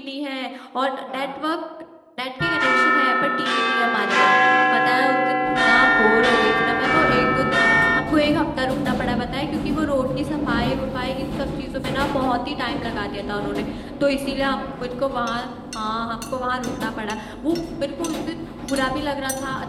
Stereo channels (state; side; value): identical; both; correlation 1.00